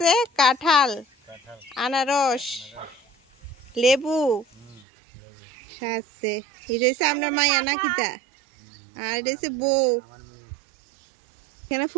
কাঁঠাল আনারস লেবু আছে। এটা হচ্ছে আপনার মায়া নাকিতা আর এটা হচ্ছে বউ। এখানে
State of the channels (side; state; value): left; drops out; at 4.9 s